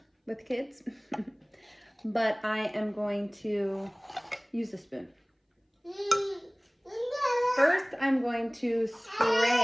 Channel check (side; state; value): both; identical; correlation 1.00